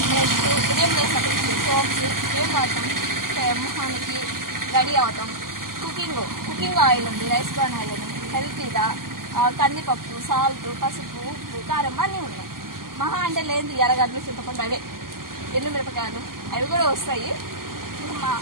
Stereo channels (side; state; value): left; late; 0.92 ms